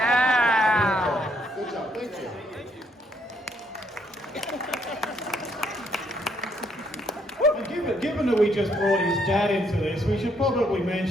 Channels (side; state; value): both; normal; correlation 0.71